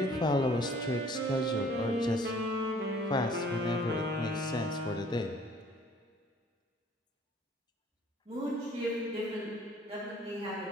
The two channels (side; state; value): both; normal; correlation 0.55